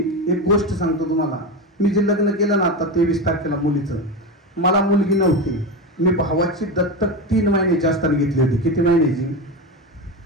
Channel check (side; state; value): both; normal; correlation 0.19